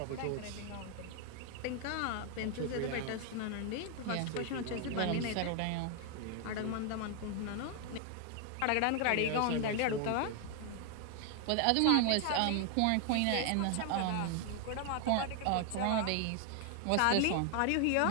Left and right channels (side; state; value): both; different; correlation 0.00